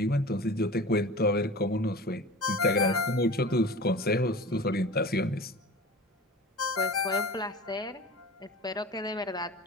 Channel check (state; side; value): normal; both; correlation 0.37